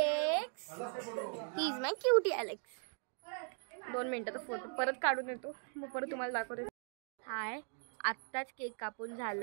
he is my cutie Alex. 2 मिनटाचा फोटो परत काढून येतो, मग परत तुम्हाला दाखवते. हाय, आत्ताच केक कापून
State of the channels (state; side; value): silent; left; 52 dB below the other